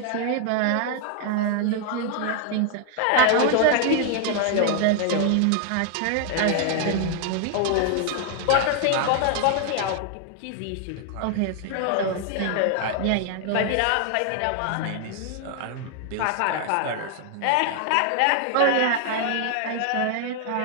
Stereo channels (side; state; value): both; different; correlation 0.00